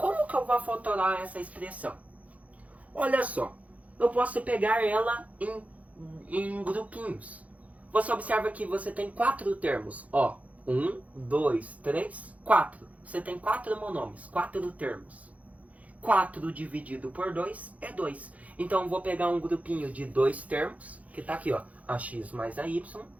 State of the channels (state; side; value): late; left; 0.069 ms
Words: que eu vou fatorar essa expressão? Olha só, eu posso pegar ela em grupinhos. Você observa que você tem 4 termos. Ó, 1, 2, 3, 4. Você tem 4 monômios, 4 termos. 4 dividido por 2 é 2. Então eu vou pegar um grupinho de 2 termos, que está aqui, ó, AX mais AY.